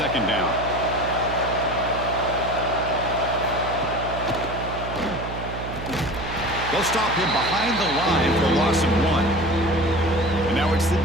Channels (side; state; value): right; noise; hum, 8 dB below the sound